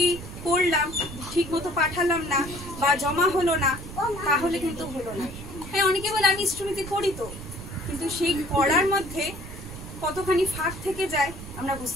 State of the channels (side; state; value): right; noise; rumble, 12 dB below the sound